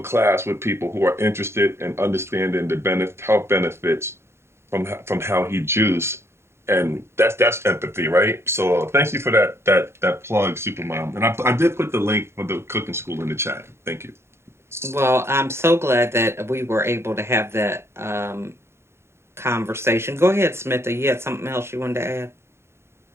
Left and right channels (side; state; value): left; late; 0.12 ms